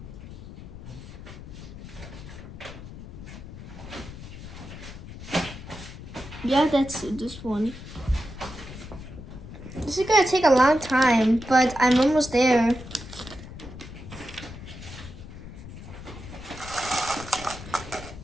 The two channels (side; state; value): left; noise; rumble, 13 dB below the sound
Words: Yeah, that's this one. This is gonna take a long time, but I'm almost there.